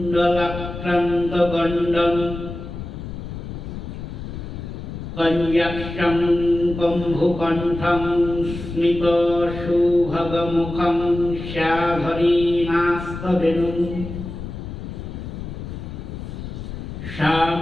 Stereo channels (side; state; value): left; noise; rumble, 9 dB below the sound